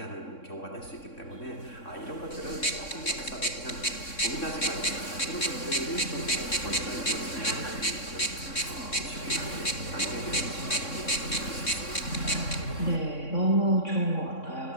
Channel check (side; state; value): right; late; 3.6 ms